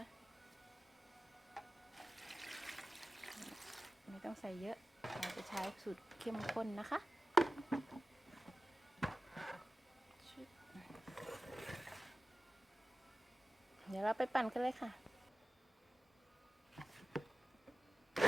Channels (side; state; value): both; normal; correlation 0.95